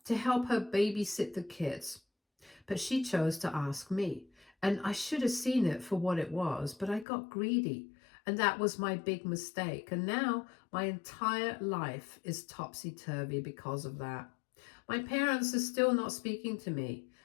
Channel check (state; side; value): drops out; right; at 7.1 s